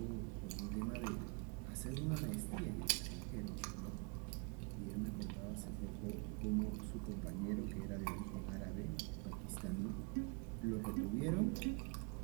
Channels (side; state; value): left; quieter; 32.8 dB